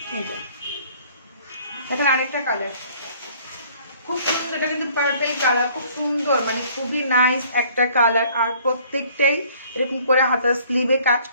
এখন আরেকটা কালার খুব সুন্দর, এটা কিন্তু পার্পল কালার, খুব সুন্দর, মানে খুবই নাইস একটা কালার। আর প্রত্যেকটাই এরকম করে হাতার স্লিভে কাজ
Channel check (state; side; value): inverted; both; correlation -0.57